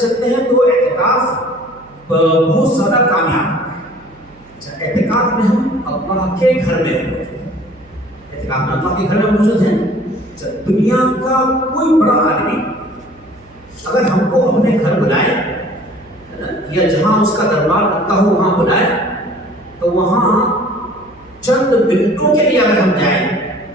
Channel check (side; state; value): right; noise; hum, 27 dB below the sound